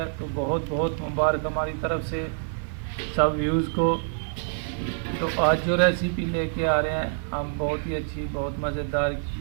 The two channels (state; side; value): silent; left; digital silence